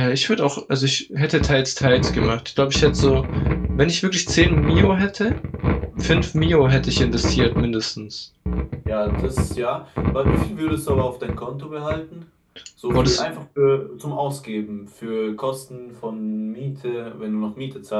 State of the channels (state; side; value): identical; both; correlation 1.00